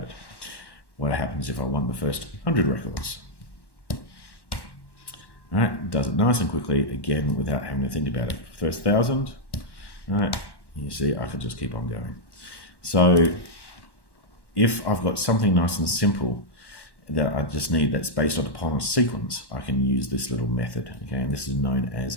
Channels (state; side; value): late; right; 1.1 ms